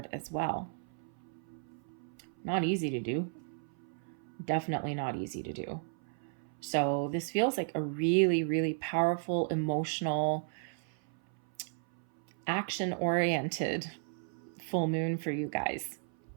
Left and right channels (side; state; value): left; silent; 55 dB below the other